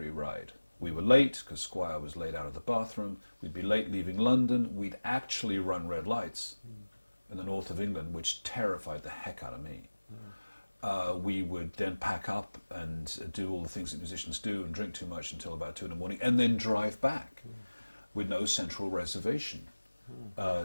ride. We were late because Squire was late out of the bathroom. We'd be late leaving London. We'd actually run red lights in the north of England, which terrified the heck out of me. We would then pack up and do all the things that musicians do and drink too much until about 2 in the morning, and then drive back with no central reservation.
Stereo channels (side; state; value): both; inverted; correlation -1.00